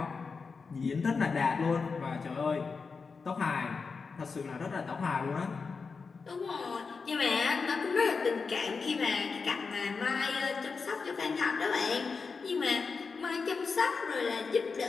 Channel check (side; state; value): right; quieter; 4.9 dB